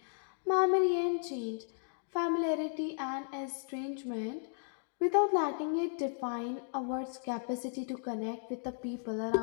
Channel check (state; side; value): silent; right; digital silence